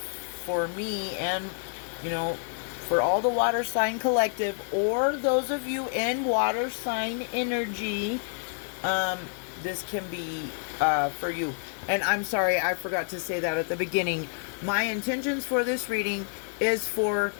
for me and, you know, for all the water sign collective, or those of you in water sign energy, this can be for you. And I'm sorry, I forgot to say that at the beginning. My intentions for this reading is for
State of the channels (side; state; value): right; silent; digital silence